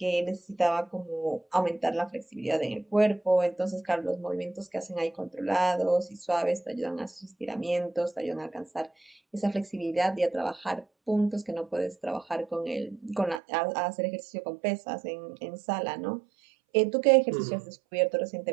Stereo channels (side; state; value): left; drops out; at 13.4 s